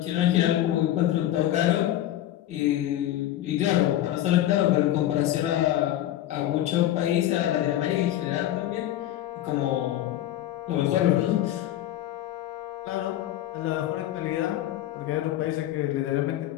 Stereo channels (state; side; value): quieter; right; 13.2 dB